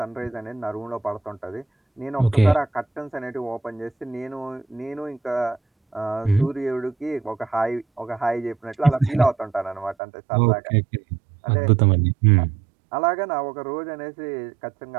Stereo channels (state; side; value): drops out; left; at 10.0 s